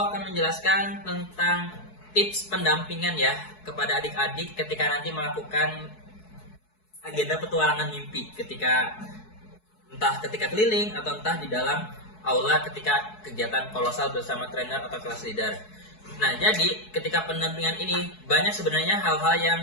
menjelaskan tentang tips pendampingan ya kepada adik-adik ketika nanti melakukan agenda petualangan mimpi, entah ketika keliling atau entah di dalam aula ketika kegiatan kolosal bersama trainer atau kelas leader. Nah, jadi ketika pendampingan ini banyak sebenarnya hal-hal yang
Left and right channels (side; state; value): right; late; 4.6 ms